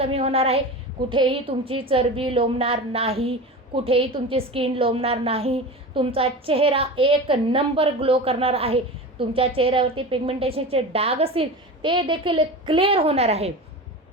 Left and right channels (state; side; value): normal; both; correlation 0.29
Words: होणार आहे. कुठेही तुमची चरबी लोंबणार नाही, कुठेही तुमची स्किन लोंबणार नाही. तुमचा चेहरा एक नंबर ग्लो करणार आहे. तुमच्या चेहऱ्यावरती पिगमेंटेशनचे डाग असतील ते देखील क्लिअर होणार आहे.